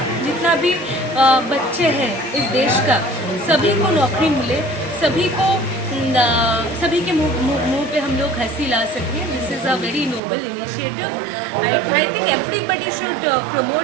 जितना भी बच्चे हैं इस देश का, सभी को नौकरी मिले, सभी के मुंह पे हम लोग हंसी ला सकें। This is a very noble initiative. I think everybody should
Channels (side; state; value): left; drops out; at 10.2 s